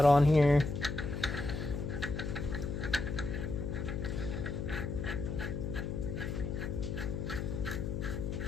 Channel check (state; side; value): noise; left; hum, 3 dB below the sound